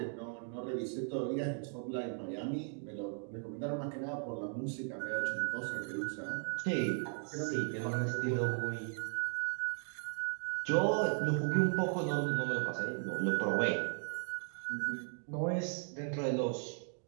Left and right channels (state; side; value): silent; left; 53 dB below the other